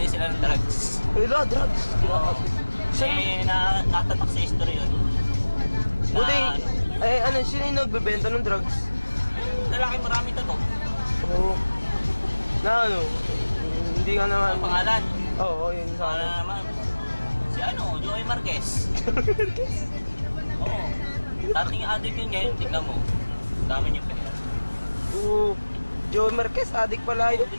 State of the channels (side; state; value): both; inverted; correlation -1.00